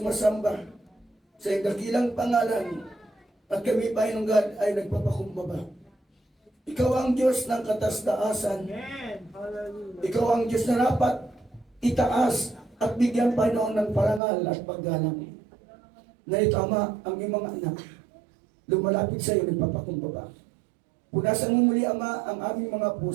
sa iyong dakilang pangalan at kami, Panginoon God, ay nagpapakumbaba. Ikaw ang Diyos ng katas-taasan. Ikaw ang Diyos na dapat itaas at bigyan, Panginoon, ng parangal at paggalang. Na ito, Ama, ang iyong mga anak, lumalapit sa iyo, nagpapakumbaba. Punasan mo muli, Ama, ang aming mga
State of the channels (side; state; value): left; drops out; at 14.2 s